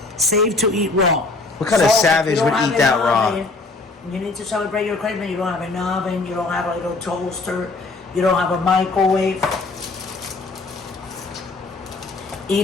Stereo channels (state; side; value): quieter; right; 3.5 dB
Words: save to eat raw. What kind of savage would eat that raw? You need to celebrate your Christmas. You don't have an oven, you don't have a little toaster, you don't have a microwave. Eat